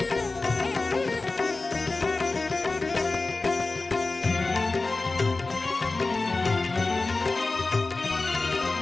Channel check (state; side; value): quieter; right; 3.4 dB